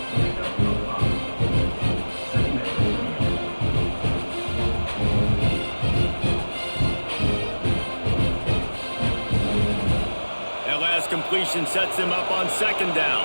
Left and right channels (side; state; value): both; inverted; correlation -1.00